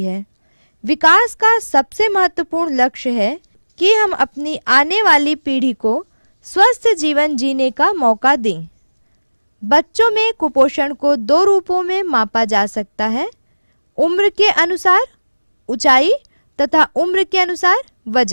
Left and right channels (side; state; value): both; inverted; correlation -1.00